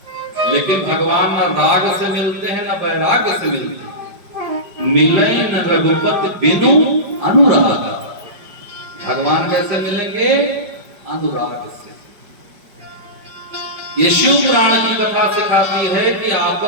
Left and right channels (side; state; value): left; late; 5.1 ms